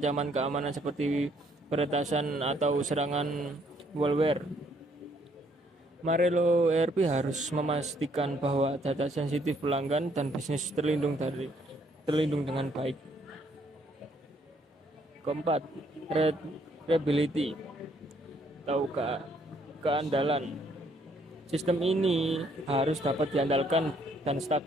keamanan seperti peretasan atau serangan malware. Marelo ERP harus memastikan bahwa data sensitif pelanggan dan bisnis terlindung dengan baik. Keempat, reliability atau keandalan. Sistem ini harus dapat diandalkan dan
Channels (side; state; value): both; normal; correlation 0.68